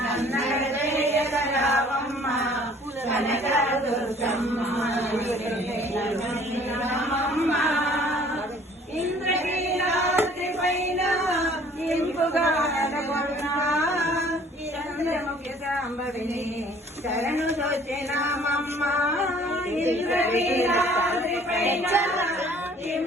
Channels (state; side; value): normal; both; correlation 0.54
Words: జయగరావమ్మ కనకదుర్గమ్మ రామమ్మ ఇంద్రకీలాద్రి పైన ఇంపుగా చంద్రముఖి సాంబవిని శరణు దోచినామమ్మ ఇంద్రకీలాద్రి పైన